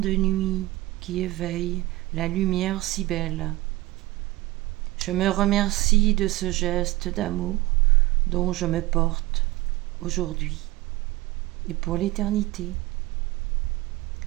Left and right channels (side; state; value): left; quieter; 18.8 dB